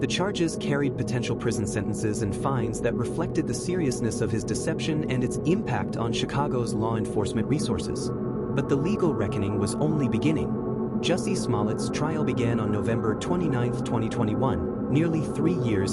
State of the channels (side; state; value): both; identical; correlation 1.00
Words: charges carried potential prison sentences and fines that reflected the seriousness of his deception and its impact on Chicago's law enforcement resources. But the legal reckoning was only beginning. Jussie Smollett's trial began on November 29, 2021, nearly 3